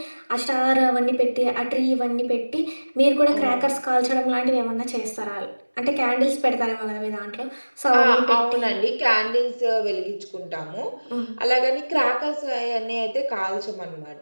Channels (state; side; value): inverted; both; correlation -1.00